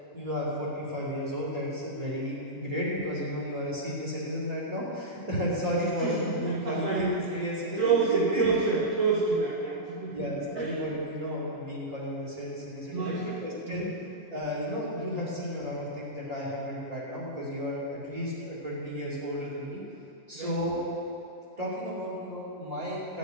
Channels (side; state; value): both; normal; correlation -0.13